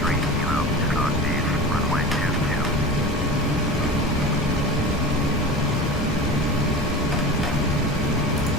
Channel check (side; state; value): both; normal; correlation 0.32